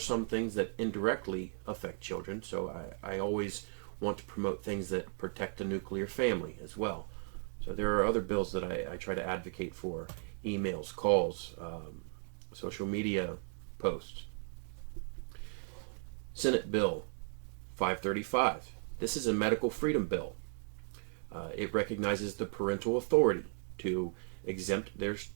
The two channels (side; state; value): left; silent; 54 dB below the other